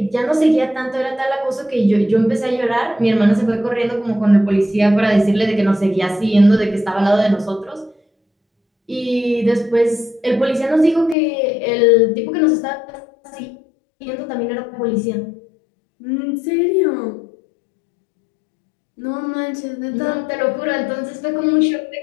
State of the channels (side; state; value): right; drops out; at 11.2 s